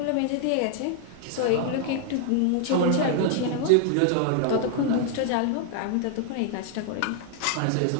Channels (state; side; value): different; both; correlation 0.00